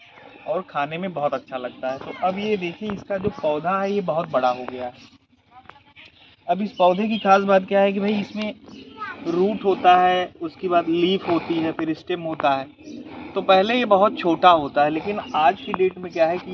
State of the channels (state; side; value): identical; both; correlation 1.00